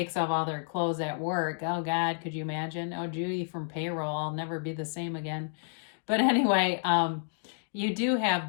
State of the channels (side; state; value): right; silent; 58 dB below the other